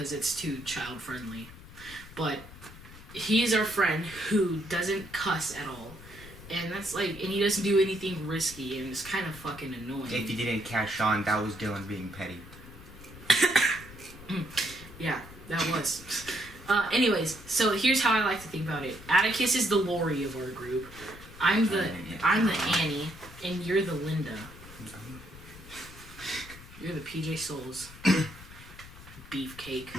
it's too child friendly. But he is our friend who doesn't cuss at all. And that's like, and he doesn't do anything risky, and it's kind of fucking annoying. If you didn't catch on, that was Dylan being petty. Yeah, that was. Anyways, so here's how I like to think about it. Atticus is the Laurie of our group. I'm the Annie, and you're the Linda. You're the PJ Souls. Beefcake.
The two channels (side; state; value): left; noise; rumble, 17 dB below the sound